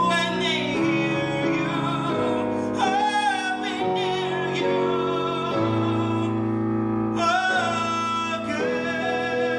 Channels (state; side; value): identical; both; correlation 1.00